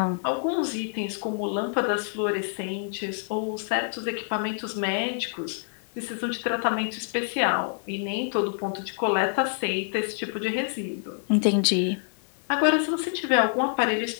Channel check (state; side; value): silent; right; 57 dB below the other